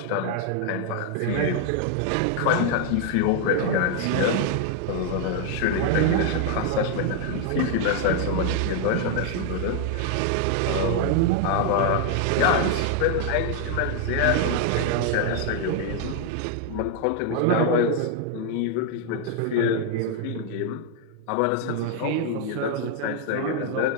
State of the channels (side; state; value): both; different; correlation 0.00